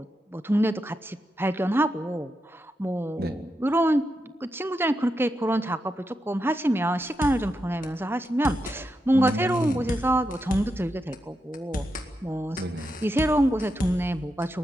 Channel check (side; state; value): both; normal; correlation 0.86